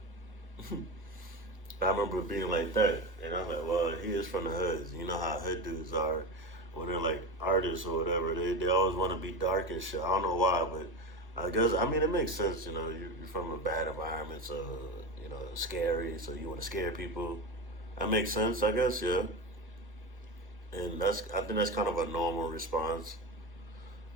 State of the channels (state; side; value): normal; both; correlation 0.23